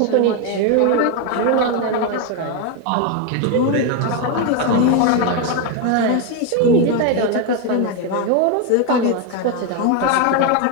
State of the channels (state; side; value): different; both; correlation 0.02